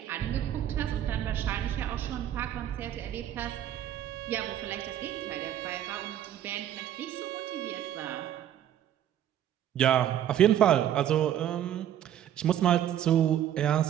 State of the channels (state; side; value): quieter; left; 11.0 dB